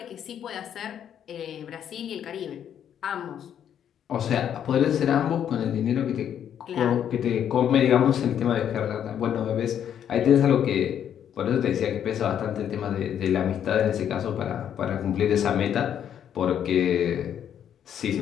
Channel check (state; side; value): quieter; right; 9.4 dB